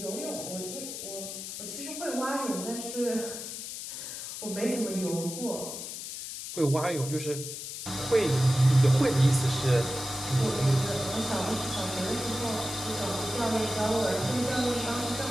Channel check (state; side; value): noise; left; hiss, 8 dB below the sound